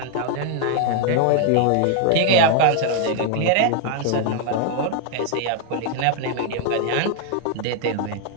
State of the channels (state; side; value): different; both; correlation 0.00